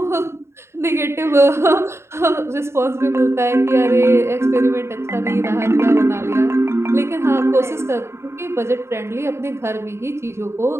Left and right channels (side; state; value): left; late; 0.13 ms